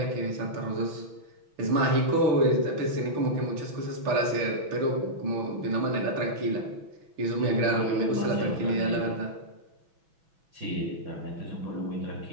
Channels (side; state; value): left; late; 6.1 ms